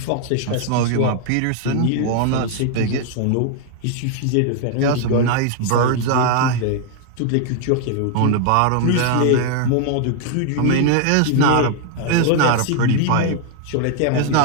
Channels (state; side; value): different; both; correlation 0.00